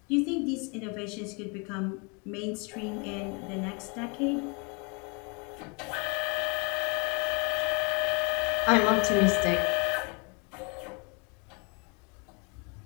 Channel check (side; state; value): right; quieter; 31.9 dB